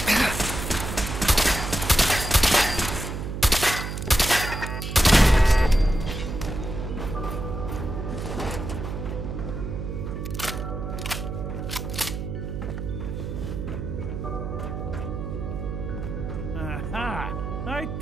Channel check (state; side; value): noise; right; hum, 5 dB below the sound